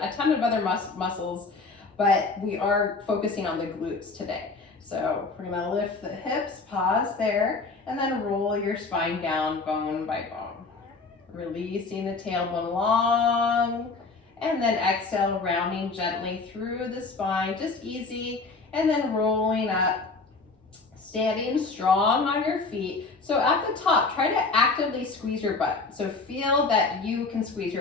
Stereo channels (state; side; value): quieter; right; 3.9 dB